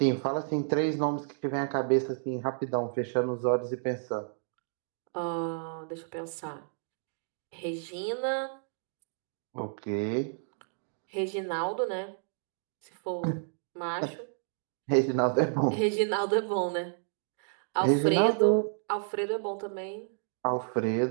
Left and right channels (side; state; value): left; silent; digital silence